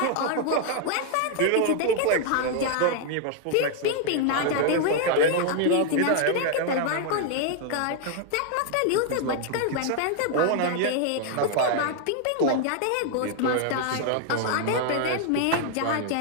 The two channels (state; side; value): different; both; correlation 0.00